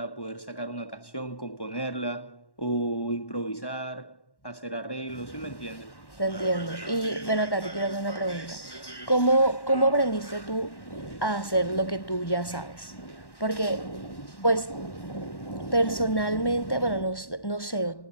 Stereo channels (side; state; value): right; late; 1.1 ms